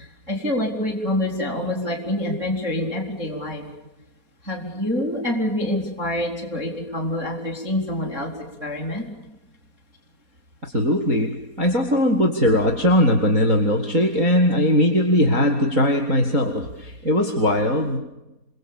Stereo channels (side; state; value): left; late; 4.2 ms